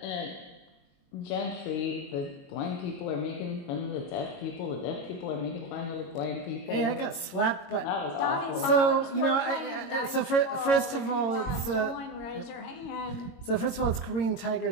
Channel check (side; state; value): right; late; 22 ms